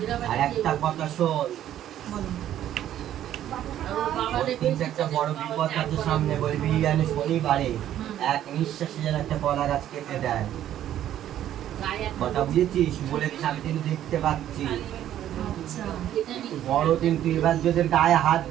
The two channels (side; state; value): left; quieter; 11.7 dB